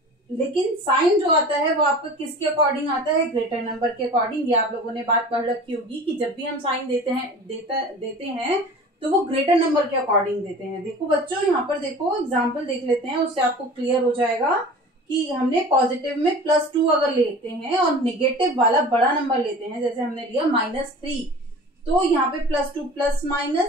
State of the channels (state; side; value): normal; both; correlation 0.40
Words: लेकिन साइन जो आता है वो आपका किसके अकॉर्डिंग आता है, ग्रेटर नंबर के अकॉर्डिंग। ये आप लोगों ने बात पढ़ रखी होगी कि जब भी हम साइन देते हैं तो वो ग्रेटर नंबर के अकॉर्डिंग देते हैं। देखो बच्चों, यहाँ पर देखो एग्जाम्पल देख लेते हैं, उससे आपको क्लियर हो जाएगा कि हमने पॉजिटिव में +2 अगर लेते हैं और निगेटिव वाला बड़ा नंबर लेते हैं, जैसे हमने लिया -3, तो यहाँ पे +2 प्लस